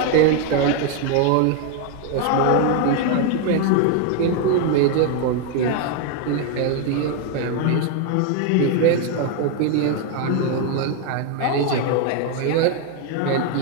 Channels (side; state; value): both; different; correlation 0.01